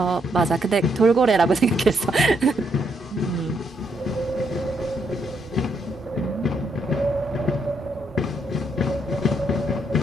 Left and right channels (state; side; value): normal; both; correlation 0.75